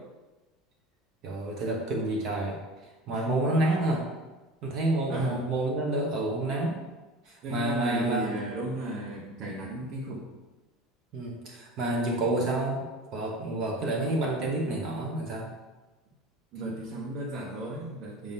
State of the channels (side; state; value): both; normal; correlation 0.38